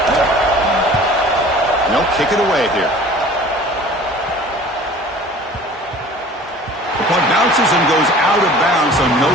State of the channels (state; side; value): normal; both; correlation 0.46